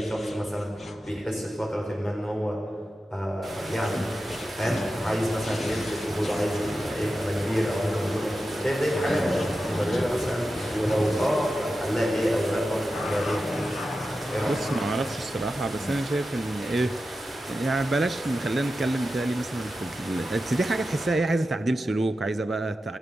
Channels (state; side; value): normal; both; correlation 0.92